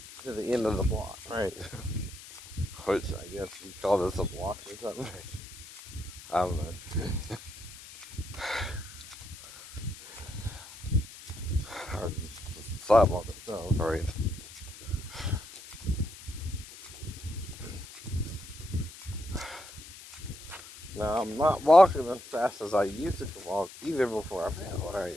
to the end of the block, right? Which I guess you call this a block or something. I don't know. Or the sidewalk itself, right? Now, I'm not walking as fast as I used to walk, even before I fell, right?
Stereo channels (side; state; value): left; noise; hiss, 16 dB below the sound